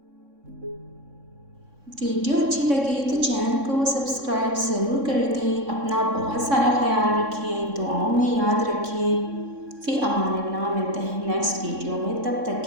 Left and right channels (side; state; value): left; late; 3.6 ms